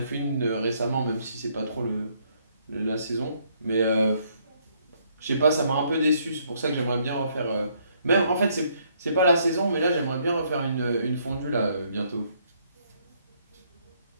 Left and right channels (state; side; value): inverted; both; correlation -0.69